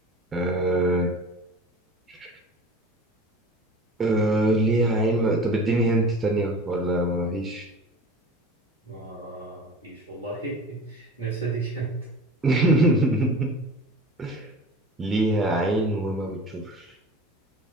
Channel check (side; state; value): both; normal; correlation 0.37